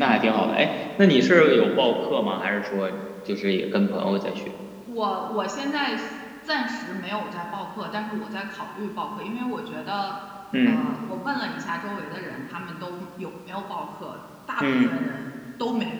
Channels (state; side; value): identical; both; correlation 1.00